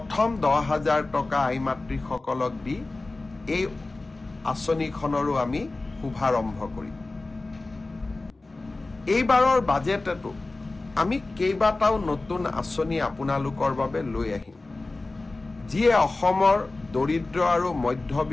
10,000 টকা আই মাতৃসকলক দি এই আঁচনিখনৰো আমি শুভাৰম্ভ কৰিম। এইবাৰৰ বাজেটতো আমি কেইবাটাও নতুন আঁচনি আপোনালোকৰ বাবে লৈ আহিম, যিয়ে অসমৰ দৰিদ্ৰ আৰু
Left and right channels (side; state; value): right; quieter; 3.2 dB